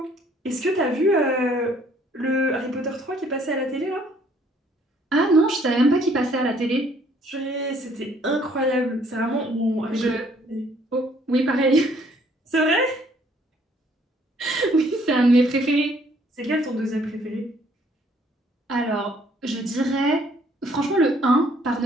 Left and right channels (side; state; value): both; normal; correlation 0.63